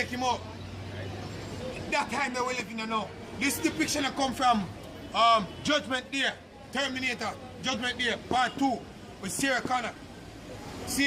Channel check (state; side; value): identical; both; correlation 1.00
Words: him out. That time that we're living in now. This depiction that come from Judgment Day, Terminator, Judgment Day, Part 2, with Sarah Connor.